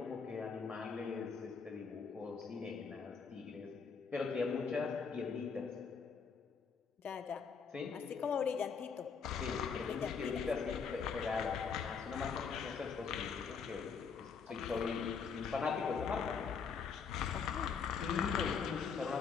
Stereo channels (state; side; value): quieter; right; 5.9 dB